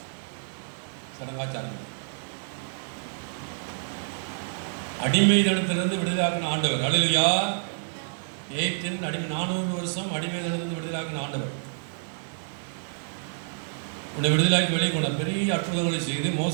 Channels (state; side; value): silent; left; digital silence